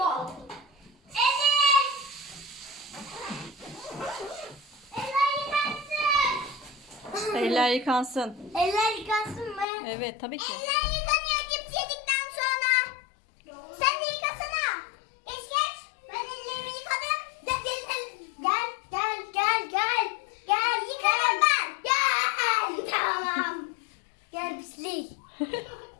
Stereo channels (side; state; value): right; drops out; at 9.7 s